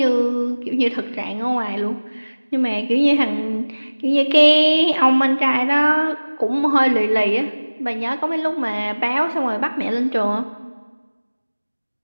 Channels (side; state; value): both; inverted; correlation -1.00